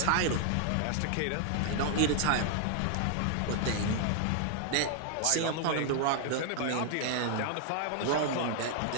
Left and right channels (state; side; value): different; both; correlation 0.00